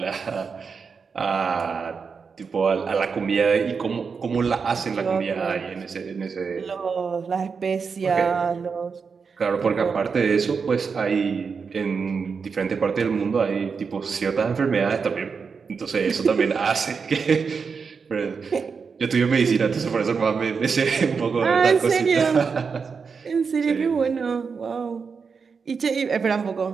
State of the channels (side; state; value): left; quieter; 5.5 dB